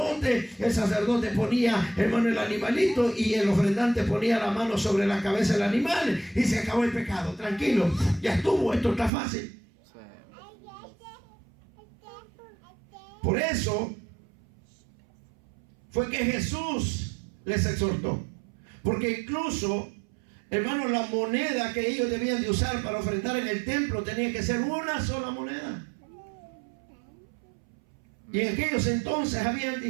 El sacerdote ponía, hermano, el animalito y el ofrendante ponía la mano sobre la cabeza del animal y se acabó el pecado. Tranquilo, ya estuvo, esto está fácil. Sí. Por eso fue que Jesús les exhortó. Porque incluso, hermanos, la moneda que ellos debían de usar para ofrendar en el templo tenía que ser una sola moneda. Y en aquellos entonces habían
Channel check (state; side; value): drops out; left; at 9.1 s